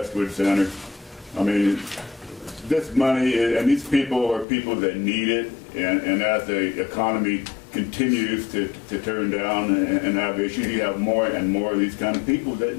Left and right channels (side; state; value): right; drops out; at 4.5 s